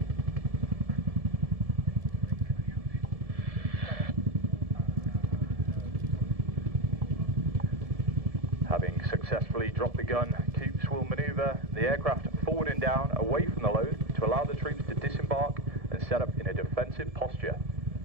Having successfully dropped the gun, Coops will manoeuvre the aircraft forward and down away from the load to allow the troops to disembark and set up in a defensive posture.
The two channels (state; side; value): late; left; 1.7 ms